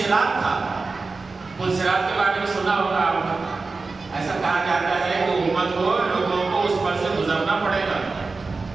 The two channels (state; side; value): quieter; left; 4.0 dB